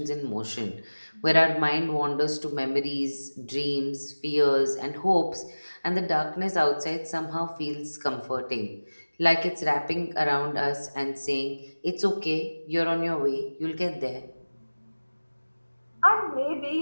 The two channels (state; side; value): inverted; both; correlation -1.00